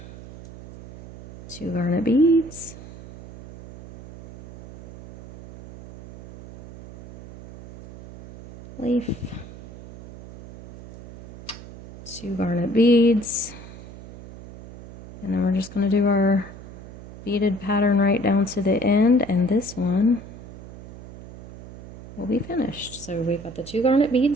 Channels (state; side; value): noise; right; hum, 15 dB below the sound